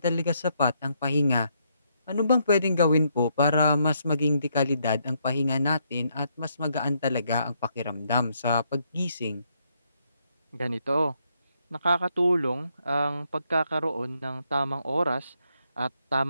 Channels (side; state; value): both; inverted; correlation -0.75